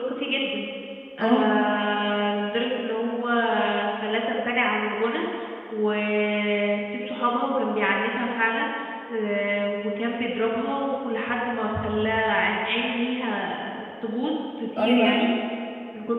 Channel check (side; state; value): both; identical; correlation 1.00